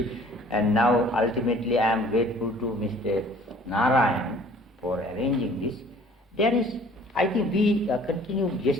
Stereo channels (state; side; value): normal; both; correlation 0.53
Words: and now ultimately I am grateful to Mr. Narayan for arranging this. There is, I think we continued